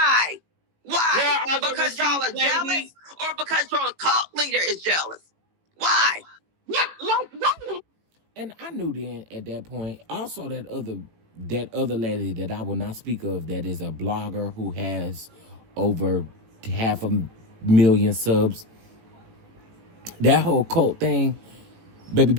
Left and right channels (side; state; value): left; late; 18 ms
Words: Why? Because y'all are jealous, or because your cult leader is jealous? Why? What? And I knew then at that point. Also, that other lady that I will not speak of, that is a blogger who has over 500,000 subs. That whole cult thing, baby,